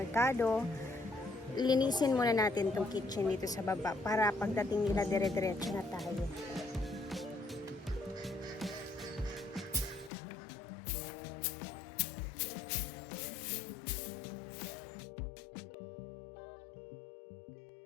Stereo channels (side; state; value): right; drops out; at 10.1 s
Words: Linisin muna natin tong kitchen dito sa baba para pagdating nila dire-diretso na tayo.